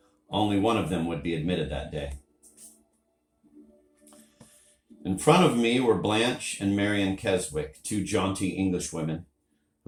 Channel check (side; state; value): both; identical; correlation 1.00